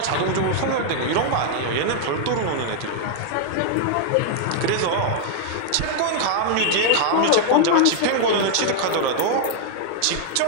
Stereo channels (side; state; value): both; different; correlation 0.00